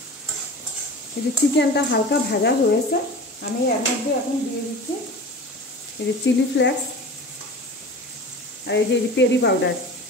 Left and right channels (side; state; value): both; normal; correlation 0.35